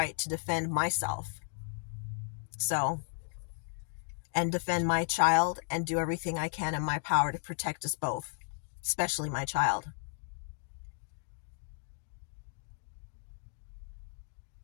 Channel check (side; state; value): right; silent; digital silence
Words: to defend myself. And defend my child and do everything I can in my power to protect us both, especially my child.